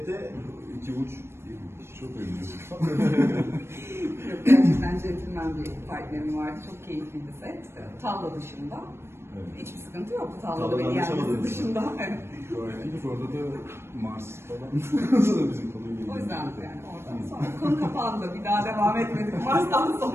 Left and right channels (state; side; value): late; left; 0.12 ms